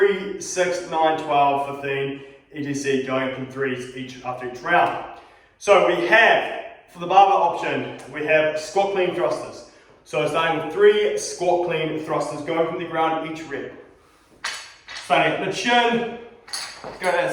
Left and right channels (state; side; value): identical; both; correlation 1.00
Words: 6, 9, 12, 15, etc. going up in 3s after each round. So we have, for the barbell option, we have squat clean thrusters. So starting with 3 squat clean thrusters going from the ground each rep. Starting at the chin, go to